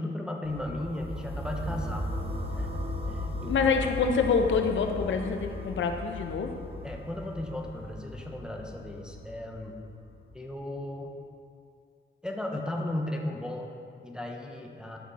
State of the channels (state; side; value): quieter; right; 3.4 dB